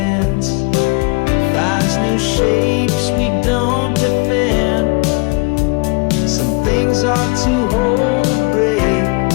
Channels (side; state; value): right; quieter; 29.4 dB